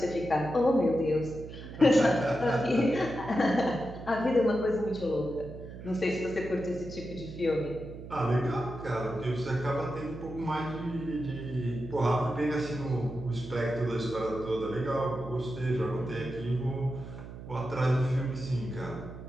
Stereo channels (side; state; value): right; noise; hum, 12 dB below the sound